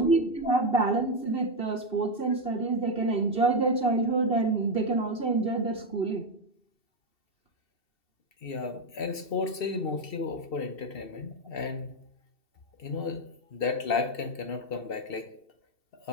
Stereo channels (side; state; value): right; late; 2.7 ms